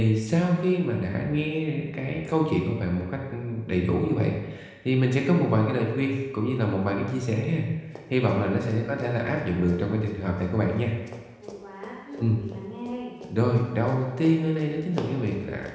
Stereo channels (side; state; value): both; identical; correlation 1.00